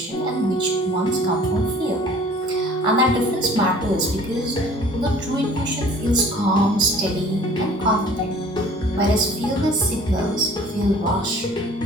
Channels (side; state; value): both; normal; correlation 0.50